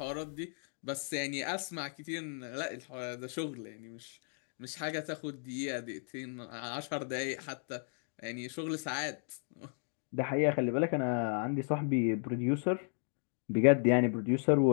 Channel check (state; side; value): silent; right; 55 dB below the other